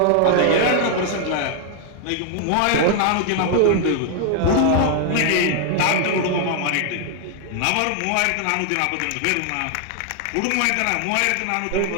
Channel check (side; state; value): both; different; correlation 0.00